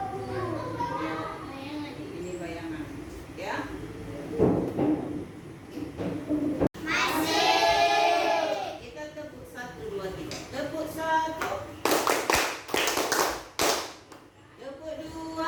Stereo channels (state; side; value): identical; both; correlation 1.00